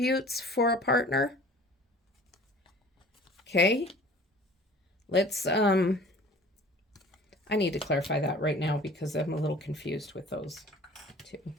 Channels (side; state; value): both; normal; correlation 0.46